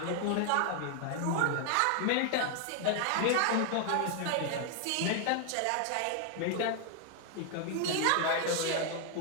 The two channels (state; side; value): different; both; correlation 0.00